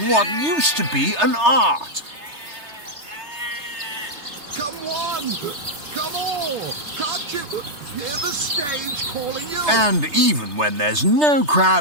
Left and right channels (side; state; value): left; late; 3.3 ms